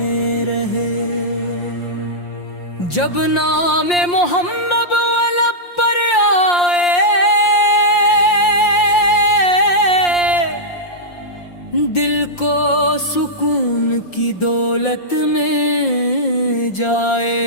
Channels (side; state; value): right; late; 5.7 ms